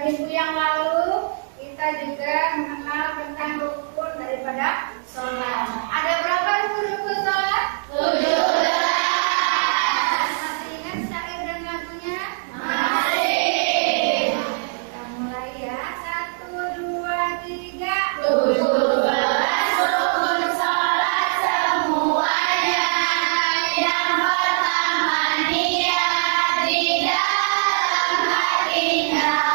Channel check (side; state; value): left; silent; digital silence